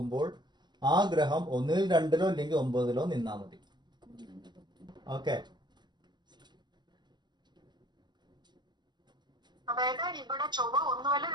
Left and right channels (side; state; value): left; late; 0.21 ms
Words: ആ ഗ്രഹം ഒന്നിൽ 2ലോ അല്ലെങ്കിൽ 9ലോ നിന്നാൽ മതി. ഓക്കെ.